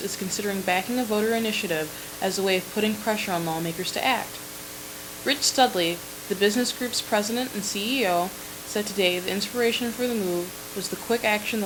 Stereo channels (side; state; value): both; identical; correlation 1.00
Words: is considering backing a voter initiative as a way of putting pressure on lawmakers to act. Rich Studley, the business group's president and CEO, said today the inspiration for the move was the quick action